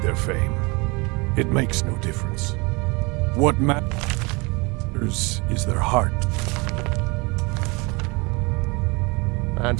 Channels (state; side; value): quieter; left; 27.5 dB